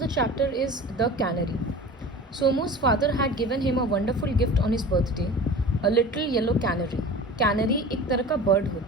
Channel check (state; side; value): normal; both; correlation 0.37